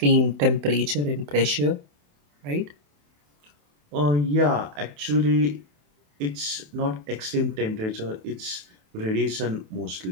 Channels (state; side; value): late; left; 28 ms